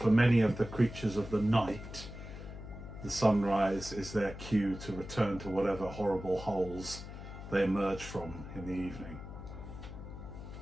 many of the creatures of the night, the sunrise is their cue to return to whatever horrible holes they emerge from in the evening.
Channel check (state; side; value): noise; left; hum, 11 dB below the sound